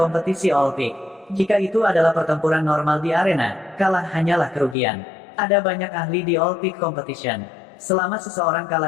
All Peak. Jika itu adalah pertempuran normal di arena, kalah hanyalah kerugian. Ada banyak ahli di All Peak Competition. Selama seseorang kalah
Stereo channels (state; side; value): drops out; right; at 4.8 s